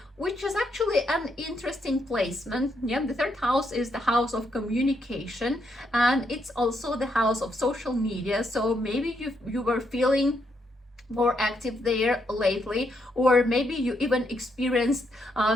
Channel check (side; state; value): both; normal; correlation 0.77